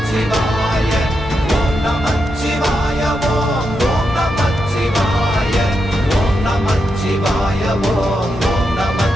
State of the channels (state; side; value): normal; both; correlation 0.85